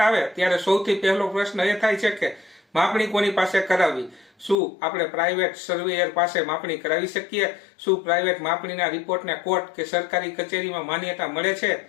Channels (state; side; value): drops out; right; at 4.5 s